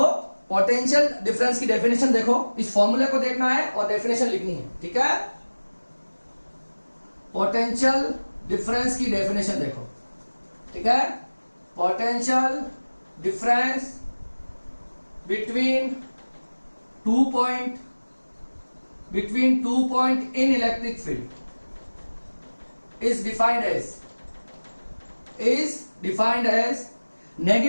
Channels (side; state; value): both; inverted; correlation -1.00